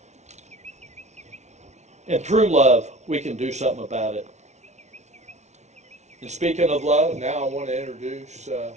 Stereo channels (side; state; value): left; late; 0.32 ms